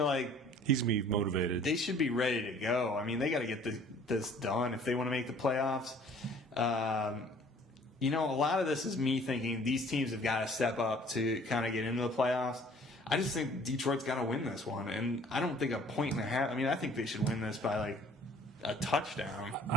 like he's going to be motivated. They should be ready to go. I mean, they got to get this done if they want to make the playoffs. A lot of this is me thinking these teams have got to step up to kind of get into the playoffs. I just think Detroit's got to win this one, and I don't think a point and a half. I mean, I think they should win this by like a touchdown.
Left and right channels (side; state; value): both; normal; correlation 0.54